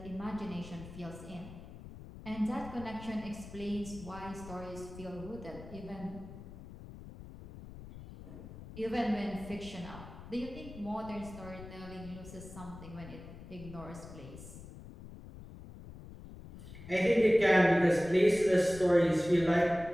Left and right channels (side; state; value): left; noise; rumble, 14 dB below the sound